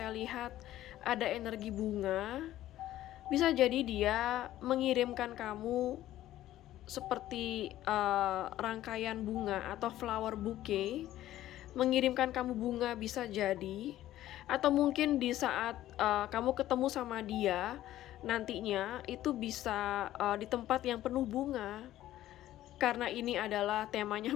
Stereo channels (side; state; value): right; quieter; 13.8 dB